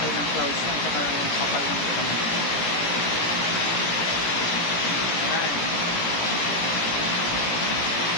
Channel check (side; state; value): right; late; 17 ms